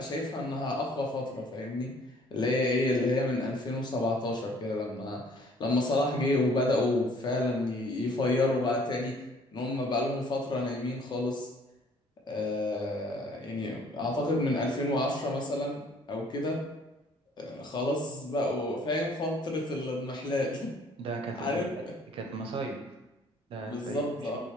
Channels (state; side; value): normal; both; correlation 0.58